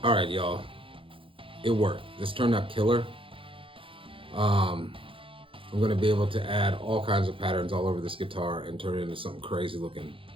All right, y'all, it worked. This turned out killer. I'm gonna be able to add all kinds of patterns all over this guitar and turn it into something crazy looking.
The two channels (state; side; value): late; left; 0.25 ms